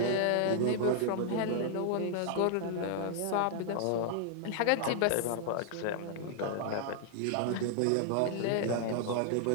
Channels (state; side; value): different; both; correlation 0.00